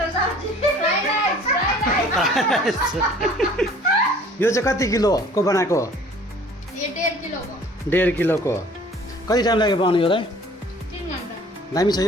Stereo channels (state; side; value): normal; both; correlation 0.52